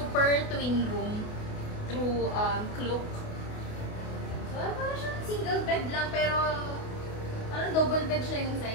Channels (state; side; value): late; right; 28 ms